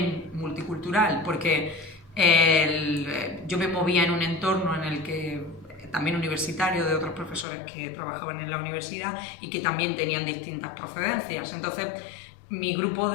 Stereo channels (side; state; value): right; drops out; at 7.5 s